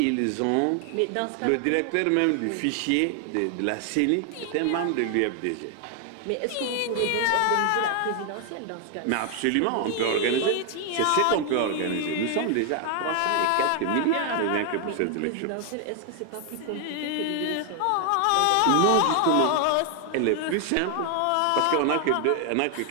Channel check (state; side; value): different; both; correlation 0.00